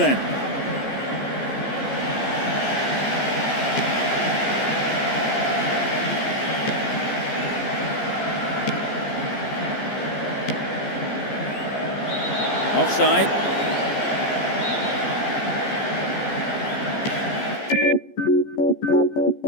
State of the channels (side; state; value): right; late; 14 ms